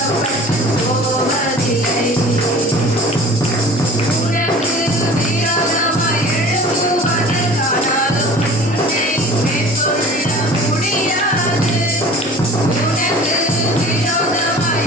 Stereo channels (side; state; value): both; normal; correlation 0.43